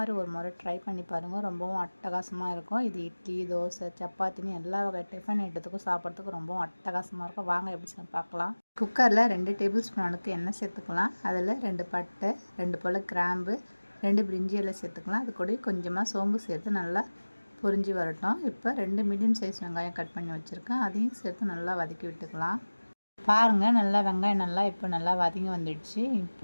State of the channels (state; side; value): inverted; both; correlation -1.00